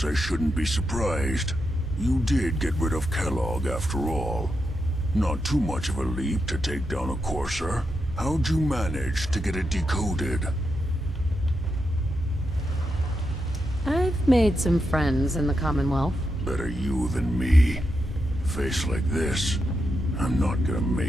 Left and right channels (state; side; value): normal; both; correlation 0.85